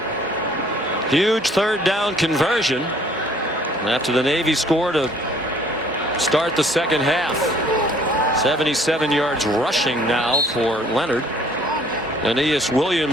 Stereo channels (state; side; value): normal; both; correlation 0.58